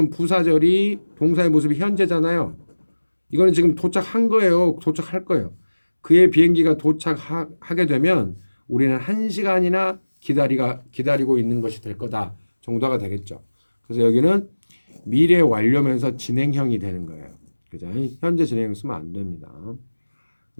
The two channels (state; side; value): inverted; both; correlation -1.00